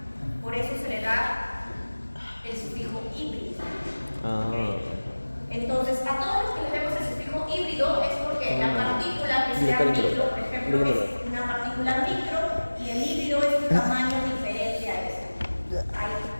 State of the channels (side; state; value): both; inverted; correlation -1.00